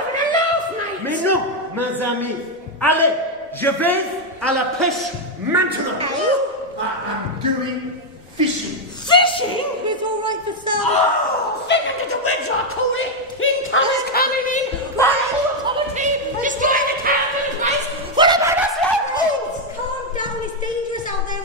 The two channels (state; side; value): normal; both; correlation 0.02